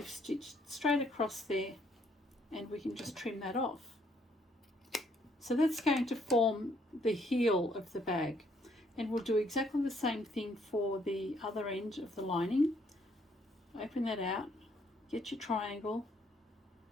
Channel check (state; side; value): normal; both; correlation 0.68